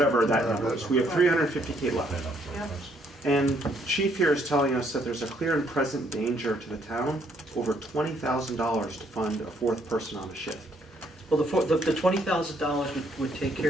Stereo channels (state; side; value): normal; both; correlation 0.69